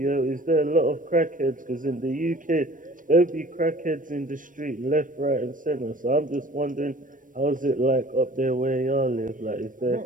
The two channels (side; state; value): left; late; 0.38 ms